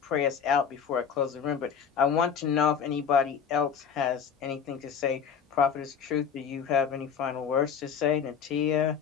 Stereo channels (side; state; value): right; quieter; 7.2 dB